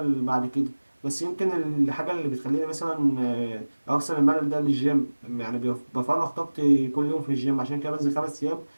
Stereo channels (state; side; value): inverted; both; correlation -1.00